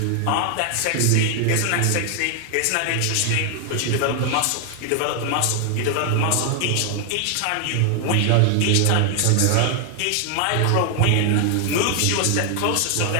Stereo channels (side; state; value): both; different; correlation 0.00